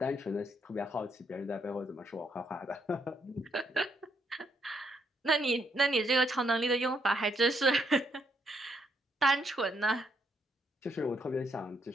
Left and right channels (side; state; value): both; normal; correlation 0.74